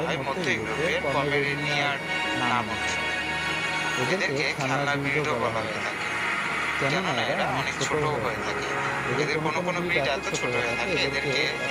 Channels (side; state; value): both; identical; correlation 1.00